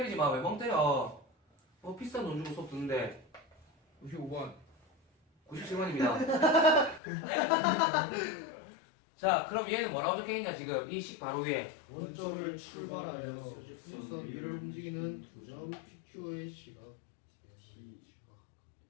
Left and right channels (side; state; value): right; drops out; at 7.0 s